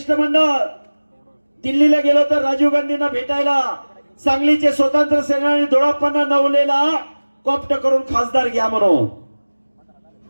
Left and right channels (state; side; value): inverted; both; correlation -1.00